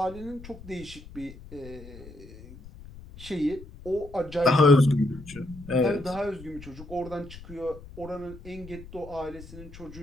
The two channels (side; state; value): left; noise; rumble, 17 dB below the sound